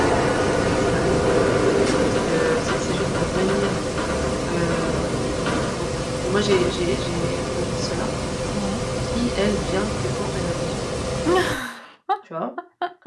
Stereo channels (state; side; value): identical; both; correlation 1.00